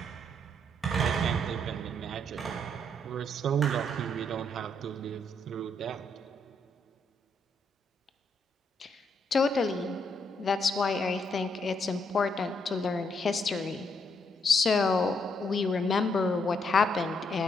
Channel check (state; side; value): normal; both; correlation 0.74